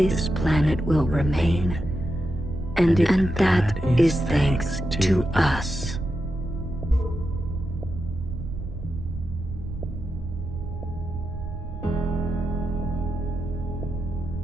planet will remain. And that is thanks to us.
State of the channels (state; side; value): noise; right; rumble, 8 dB below the sound